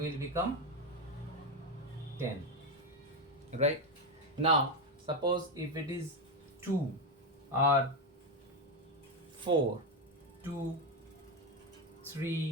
become 10. Right? Now, suppose if it is 2 or 4, 2,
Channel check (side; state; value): both; normal; correlation 0.09